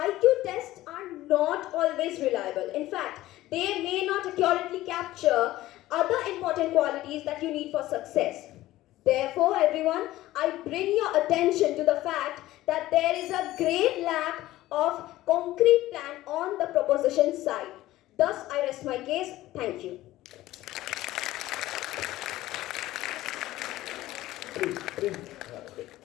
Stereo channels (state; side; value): quieter; right; 16.0 dB